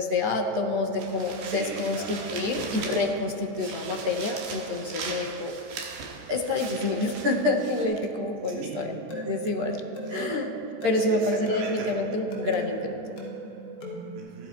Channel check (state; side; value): late; left; 14 ms